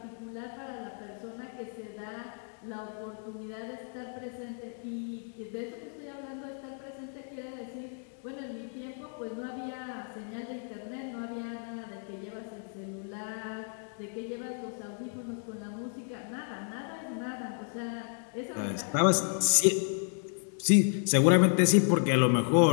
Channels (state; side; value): silent; right; 56 dB below the other